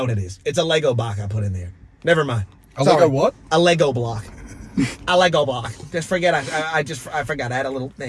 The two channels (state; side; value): identical; both; correlation 1.00